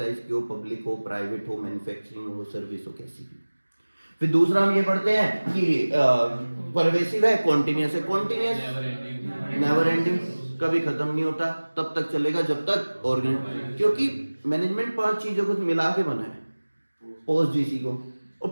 की हो, पब्लिक हो, प्राइवेट हो, मैन्युफैक्चरिंग हो, सर्विस हो, कैसी भी। फिर दूसरा हम ये पढ़ते हैं कि परवेसिव है, कॉन्टिन्यूस है। कॉन्टिन्यूस नेवर एंडिंग, कभी खत्म नहीं होता, तब तक चलेगा जब तक ऑर्गेनाइज, क्योंकि मैनेजमेंट 5 चीजों को मिला के बना है। पोस्ट जीसी को, और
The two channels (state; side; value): inverted; both; correlation -1.00